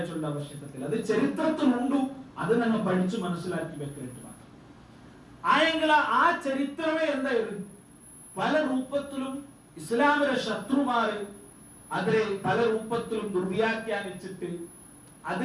ആവശ്യകത്തിൽ അത് ചരിത്രത്തിലുണ്ടു. അത് ഞങ്ങൾ പഠിച്ചു മനസ്സിലാക്കി വെക്കേണ്ടത് മാത്രം ആയെങ്കിൽ ആ ചരിത്രമേ എന്തായിരുന്നു പല രൂപത്തിലും ഇസ്ലാമിലെ ശത്രുമാര് അതിലെ പല രൂപത്തിലും ദുർവ്യാഖ്യാനിച്ചിട്ട്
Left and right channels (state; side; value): identical; both; correlation 1.00